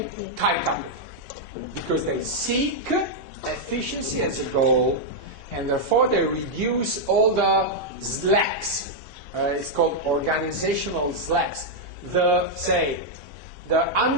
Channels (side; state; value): left; late; 2.8 ms